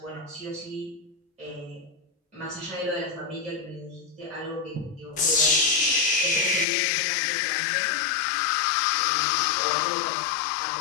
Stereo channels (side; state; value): right; drops out; at 6.7 s